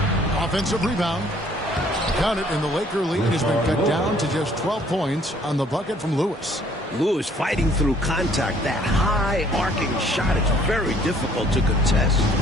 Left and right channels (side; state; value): both; normal; correlation 0.60